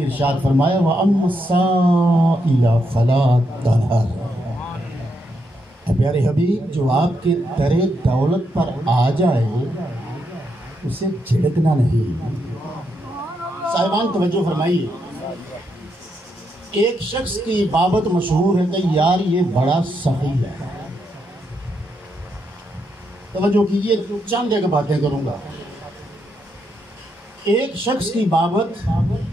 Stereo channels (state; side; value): normal; both; correlation 0.80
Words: ارشاد فرمایا وَأَمَّا السَّائِلَ فَلَا تَنْهَرْ۔ پیارے حبیب، جو آپ کے در دولت پر آ جائے اسے جھڑکنا نہیں۔ صاحبان توجہ فرمائیے، ایک شخص کی بابت مشہور ہے کہ یار یہ بڑا سخی ہے۔ توجہ کیجئے، چند ایک باتیں کروں گا۔ ایک شخص کی بابت